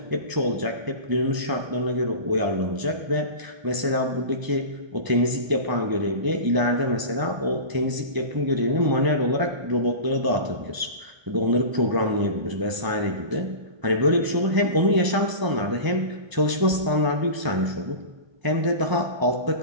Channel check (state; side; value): late; left; 1.0 ms